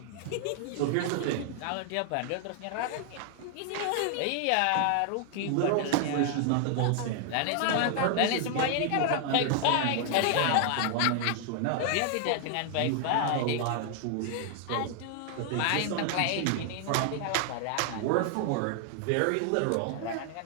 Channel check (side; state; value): both; different; correlation 0.00